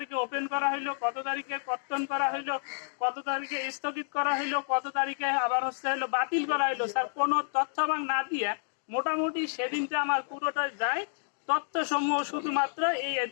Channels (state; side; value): silent; right; digital silence